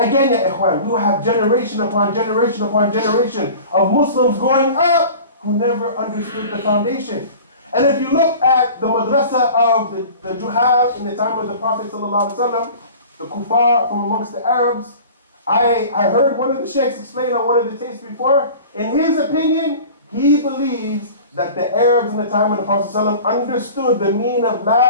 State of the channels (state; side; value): inverted; both; correlation -0.41